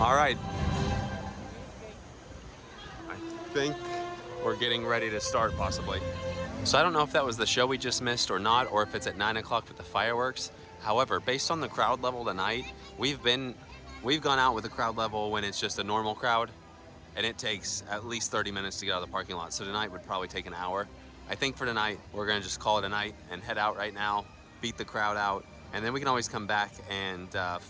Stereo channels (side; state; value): both; identical; correlation 1.00